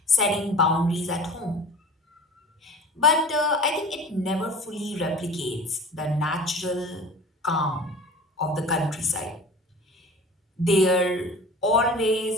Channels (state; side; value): normal; both; correlation 0.40